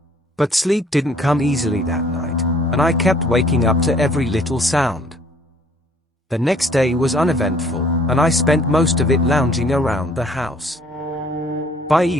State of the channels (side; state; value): both; normal; correlation 0.58